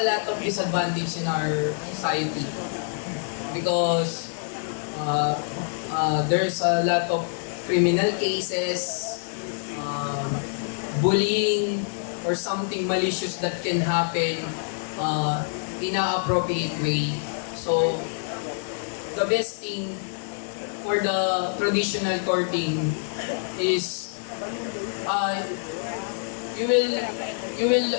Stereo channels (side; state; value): right; silent; 55 dB below the other